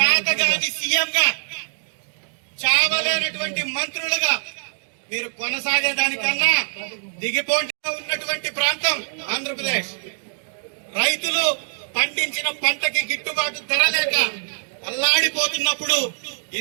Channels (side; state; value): left; silent; digital silence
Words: సీఎంగా, చావలేనటువంటి మంత్రులుగా మీరు కొనసాగేదానికన్నా దిగిపోటీ ఉన్నటువంటి ప్రాంతం ఆంధ్రప్రదేశ్. రైతులు పండించిన పంటకి గిట్టుబాటు ధర లేక అల్లాడిపోతున్నప్పుడు